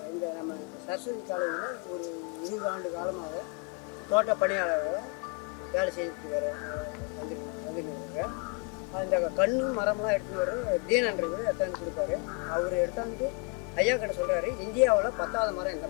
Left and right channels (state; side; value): quieter; right; 33.7 dB